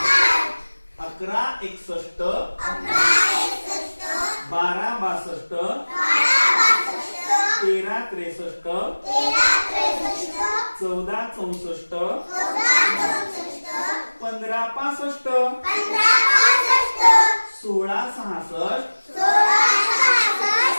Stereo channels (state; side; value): inverted; both; correlation -1.00